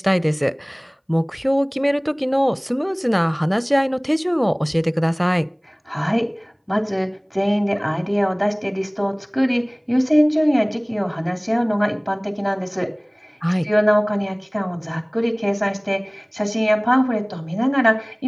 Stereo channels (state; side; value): identical; both; correlation 1.00